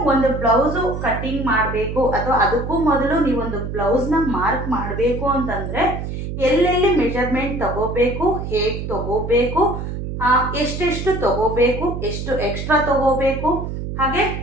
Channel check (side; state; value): right; noise; hum, 5 dB below the sound